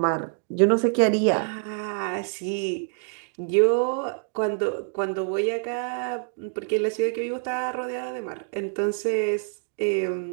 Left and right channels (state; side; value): silent; left; 61 dB below the other